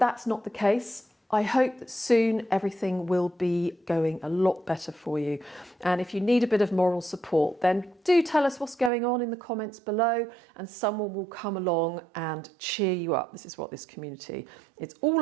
not the case, I hope that soon everything will be going a lot better for you. And if you need a bit of moral support, then do tell us what's going on in the comments below and someone will come along and cheer you up. This is what this community is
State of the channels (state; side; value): drops out; left; at 8.9 s